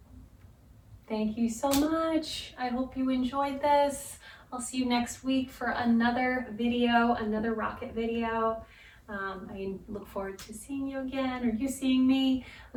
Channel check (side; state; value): both; identical; correlation 1.00